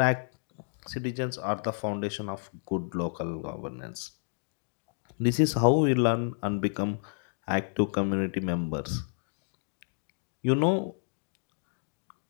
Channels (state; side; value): silent; right; digital silence